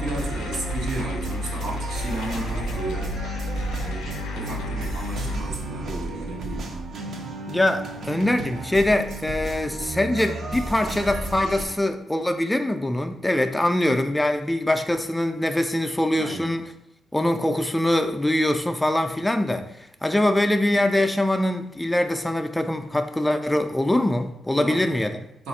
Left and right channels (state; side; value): normal; both; correlation 0.92